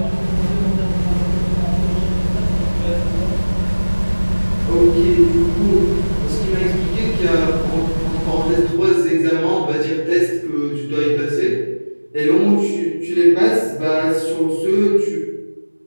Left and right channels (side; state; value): both; inverted; correlation -1.00